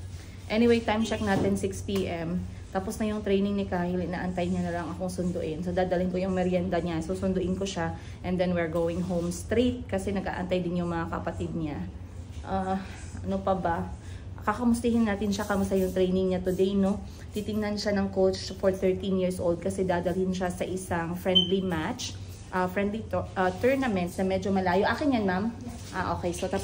anyway, time check natin 6 PM. Tapos na yung training ni Kahil, inaantay niya na lang akong sunduin. So, dadalhin ko yung merienda niya. So, sunduin ko siya. And then, we're going home straight kasi nag-aantay din yung mga kapatid niya. Ano pa ba? Kakamustihin natin siya, kamusta yung training niya today, no? Titingnan siya ng coach for 13 years old kasi dadalhin siya sa isang friendly match. Tournament na medyo malayo. Akin yan, ma'am? Okay. So,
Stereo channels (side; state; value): both; identical; correlation 1.00